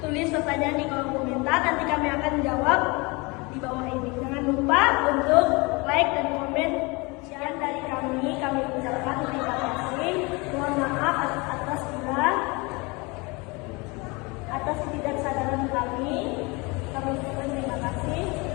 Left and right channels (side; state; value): right; quieter; 26.9 dB